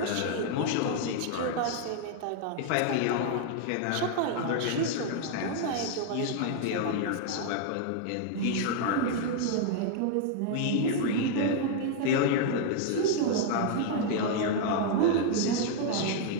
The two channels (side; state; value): both; different; correlation 0.00